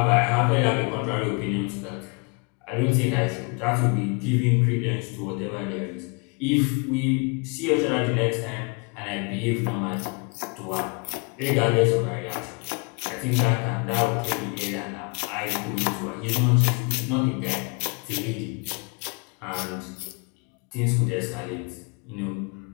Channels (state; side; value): quieter; right; 33.7 dB